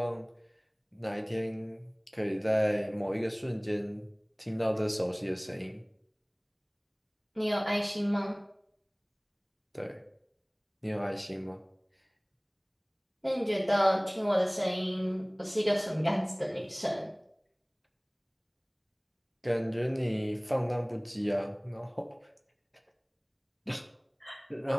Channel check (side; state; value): both; identical; correlation 1.00